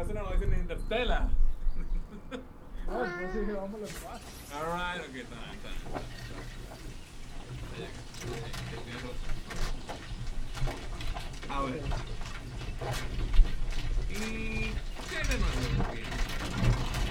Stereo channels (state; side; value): identical; both; correlation 1.00